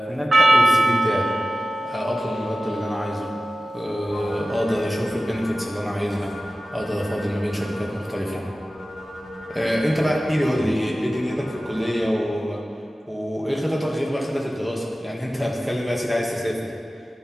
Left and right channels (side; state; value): both; normal; correlation 0.96